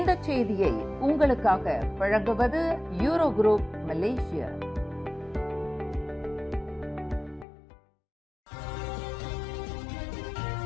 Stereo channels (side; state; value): right; drops out; at 7.5 s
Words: செய்தியை உங்களுக்காக வழங்குவது யூரோ குரூப் மலேசியா.